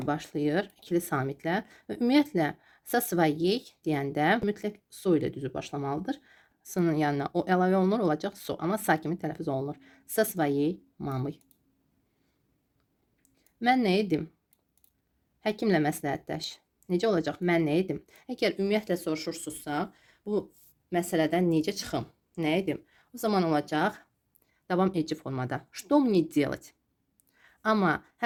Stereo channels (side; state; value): both; identical; correlation 1.00